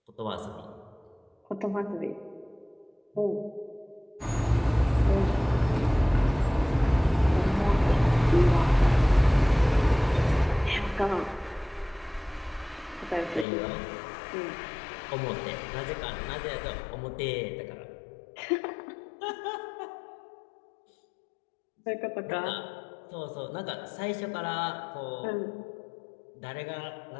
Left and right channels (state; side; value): drops out; right; at 13.5 s